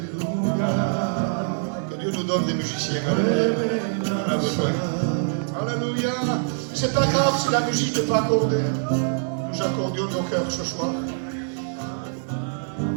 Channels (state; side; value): silent; left; 62 dB below the other